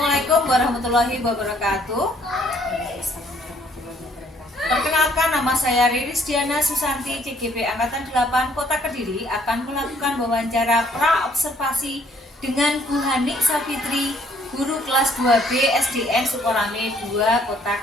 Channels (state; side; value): normal; both; correlation 0.64